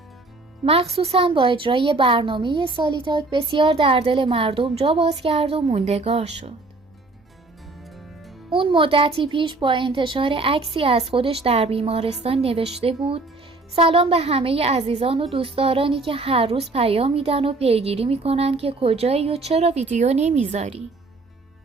مخصوصاً با اجرای برنامه سالیتاک بسیار در دل مردم جا باز کرد و موندگار شد. اون مدتی پیش با انتشار عکسی از خودش در بیمارستان نوشته بود: سلام به همه عزیزان و دوستدارانی که هر روز پیام میدن و پیگیری میکنن که کجایی و چرا ویدیو نمیذاری.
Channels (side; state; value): left; quieter; 3.3 dB